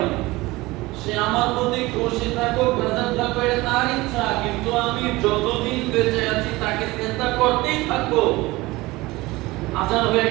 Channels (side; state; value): left; quieter; 20.6 dB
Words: সে আমার প্রতি খুশি থাকুক বেজার থাকুক এটা তার ইচ্ছা, কিন্তু আমি যতদিন বেঁচে আছি তাকে সিজদা করতেই থাকবো। আজান হয়ে